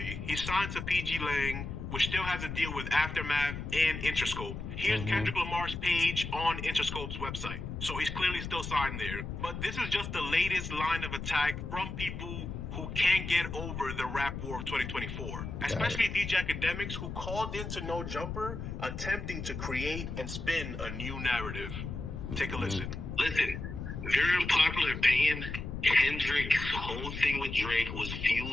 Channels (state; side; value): noise; left; rumble, 6 dB below the sound